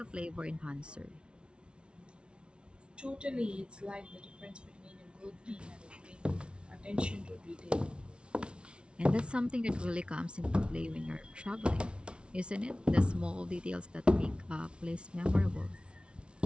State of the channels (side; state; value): left; late; 0.058 ms